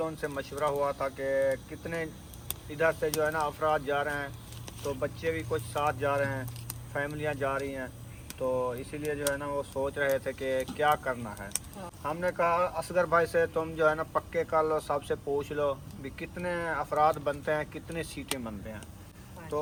उनसे मशवरा हुआ था कि कितने इधर से जो है ना अफराद जा रहे हैं, तो बच्चे भी कुछ साथ जा रहे हैं, फैमिलियां जा रही हैं, तो इसीलिए जो है ना वो सोच रहे थे कि क्या करना है। हाँ। हमने कहा असगर भाई से तुम जो है ना पक्के कर लो, सबसे पूछ लो भी कितने अफराद बनते हैं, कितनी सीटें बनते हैं। हाँ।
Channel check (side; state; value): both; identical; correlation 1.00